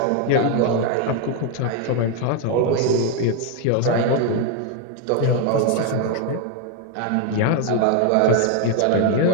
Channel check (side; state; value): both; different; correlation 0.01